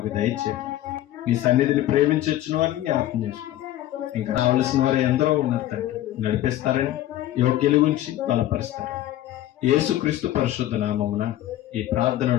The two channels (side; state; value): right; quieter; 13.7 dB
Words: దయచేయండి. మీ సన్నిధిని ప్రేమించొచ్చిన వారిని జ్ఞాపకం చేసుకోండి. ఇంకా రావాల్సిన వారు ఎందరో ఉన్నారు తండ్రి, నడిపిస్తారని, యోగ్యుల గురించి బలపరుస్తారని యేసుక్రీస్తు పరిశుద్ధ నామమున ఈ ప్రార్థన